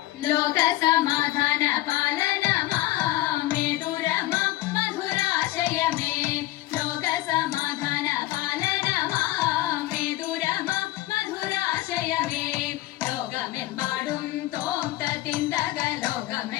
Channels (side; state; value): right; quieter; 16.9 dB